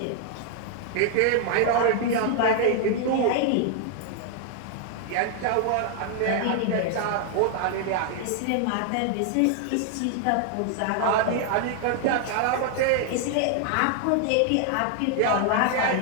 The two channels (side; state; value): both; different; correlation 0.00